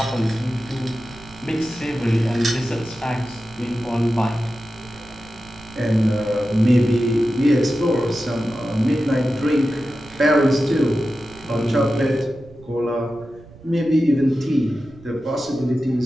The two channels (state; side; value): noise; right; rumble, 22 dB below the sound